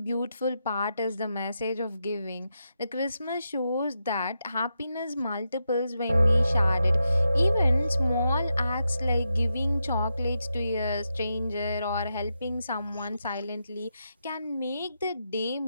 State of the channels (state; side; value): inverted; both; correlation -0.86